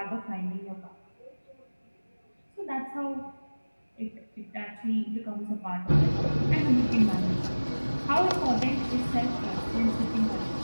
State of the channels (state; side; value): inverted; both; correlation -1.00